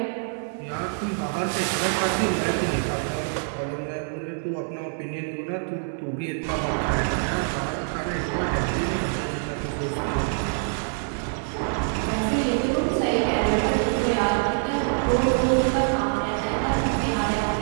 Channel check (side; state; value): left; silent; 61 dB below the other